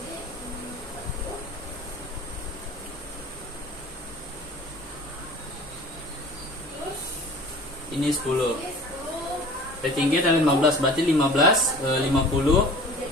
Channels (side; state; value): both; normal; correlation 0.43